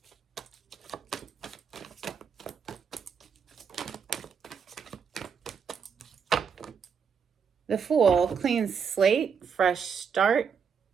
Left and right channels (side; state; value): left; quieter; 6.5 dB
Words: The Fool, clean slate, fresh start,